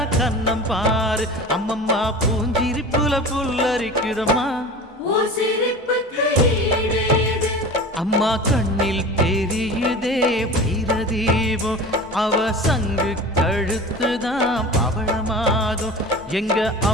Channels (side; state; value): both; normal; correlation 0.36